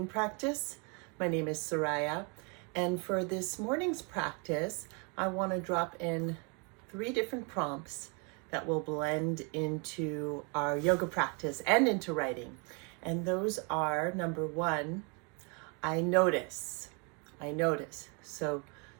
practice. My name is Suraya, and for this morning's practice, I want to drop in 3 different prompts that will blend into our yoga practice and into writing. And those are, number 1, I notice. I notice. So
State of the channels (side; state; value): left; quieter; 33.9 dB